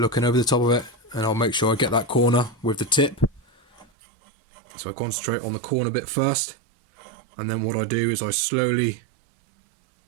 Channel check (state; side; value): drops out; left; at 3.9 s